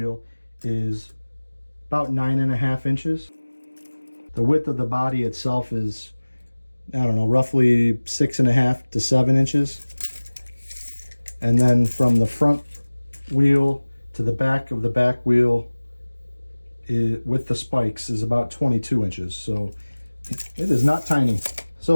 is about 9.5 inches. The width of the body itself is, I don't know, roughly 6.5 to 7 inches. And then from the front wheel to the back of the back wheel with the spikes is about 22 inches. So it is not tiny. So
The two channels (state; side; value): inverted; both; correlation -1.00